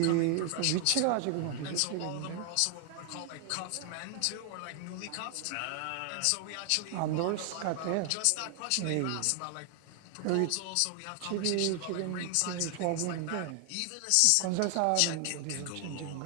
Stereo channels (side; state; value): both; different; correlation 0.00